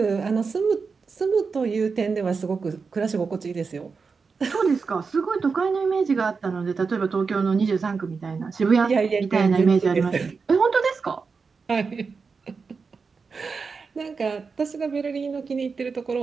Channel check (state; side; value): quieter; left; 5.0 dB